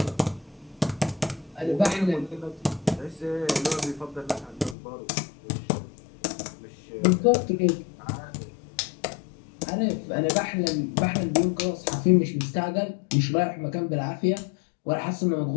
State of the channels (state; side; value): drops out; right; at 4.8 s